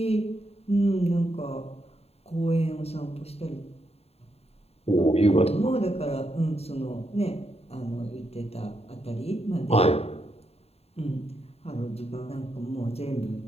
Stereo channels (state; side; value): late; right; 0.30 ms